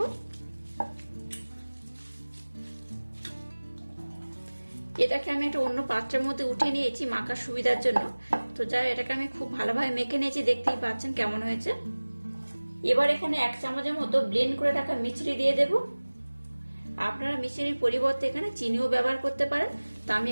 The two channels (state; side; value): inverted; both; correlation -1.00